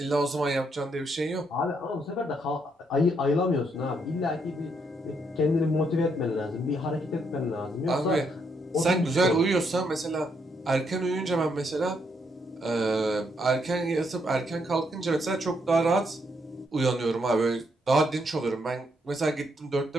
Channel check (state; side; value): normal; both; correlation 0.75